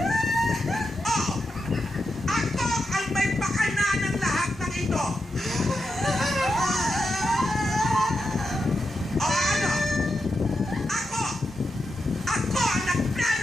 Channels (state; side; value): normal; both; correlation 0.87